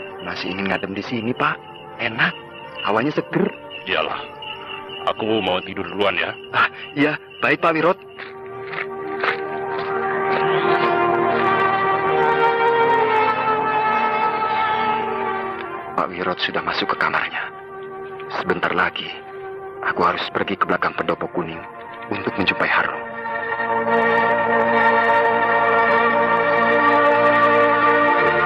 Masih ingin ngadem di sini, Pak. Enak. Hawanya seger. Iyalah. Aku mau tidur duluan ya. Iya. Baik, Pak Wirot. Pak Wirot sudah masuk ke kamarnya. Sebentar lagi, aku harus pergi ke belakang pendopo kuning untuk menjumpai Harun.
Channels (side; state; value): both; identical; correlation 1.00